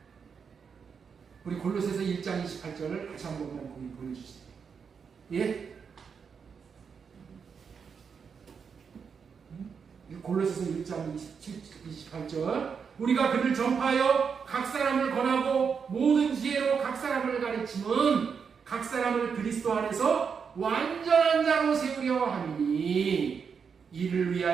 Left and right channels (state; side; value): quieter; left; 6.2 dB